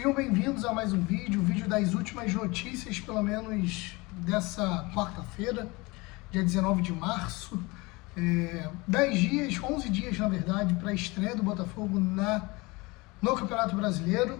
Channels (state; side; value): quieter; right; 24.2 dB